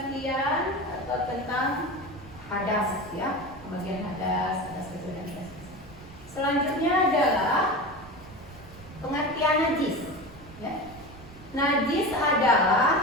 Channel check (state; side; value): noise; right; rumble, 18 dB below the sound